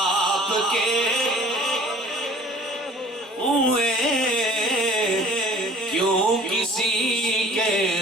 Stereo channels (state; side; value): normal; both; correlation 0.49